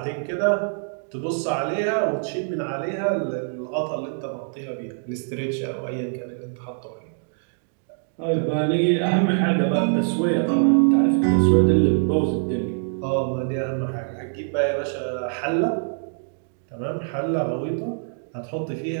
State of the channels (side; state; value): left; silent; digital silence